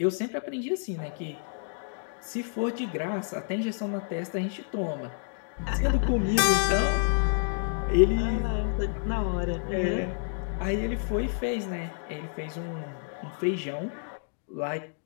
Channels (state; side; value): silent; right; digital silence